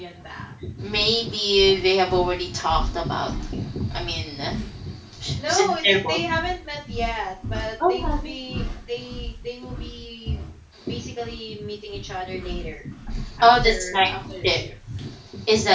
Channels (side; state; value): both; identical; correlation 1.00